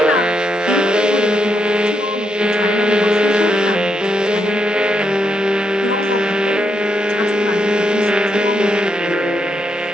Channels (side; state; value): both; normal; correlation 0.80